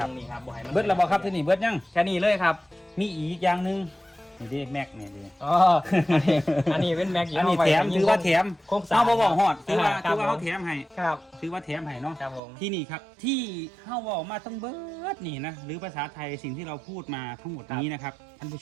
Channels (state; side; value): drops out; left; at 12.4 s